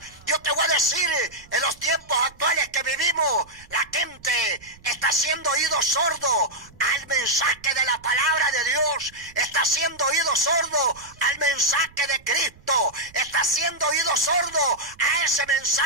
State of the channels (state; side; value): noise; right; rumble, 25 dB below the sound